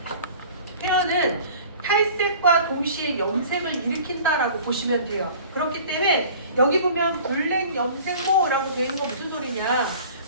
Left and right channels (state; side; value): inverted; both; correlation -0.45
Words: 페어는 탈색과 동시에 염색을 일으킨다라고 보시면 돼요. 그렇기 때문에 여기 보면 블랙 염색모라고 되어 있는 건 무슨 소리냐?